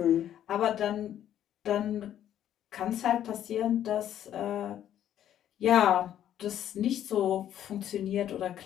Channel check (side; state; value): right; quieter; 10.9 dB